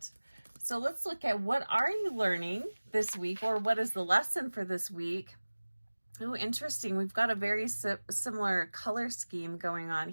So let's look at, what are you learning this week, or what is the lesson for this week? Oh, interesting. We've got a very similar color scheme going on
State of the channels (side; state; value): both; inverted; correlation -1.00